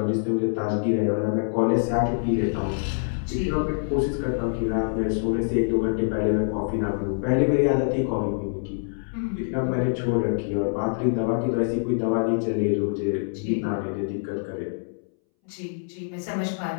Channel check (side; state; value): right; silent; 62 dB below the other